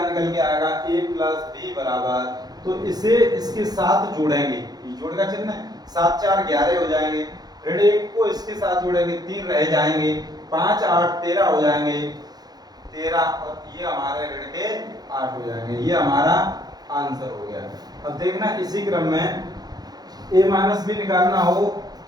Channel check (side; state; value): left; late; 0.19 ms